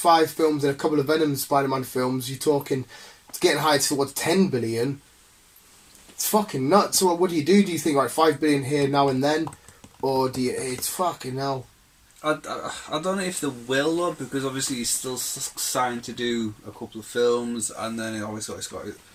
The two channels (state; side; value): identical; both; correlation 1.00